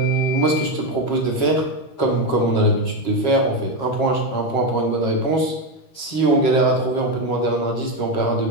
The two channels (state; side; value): late; right; 13 ms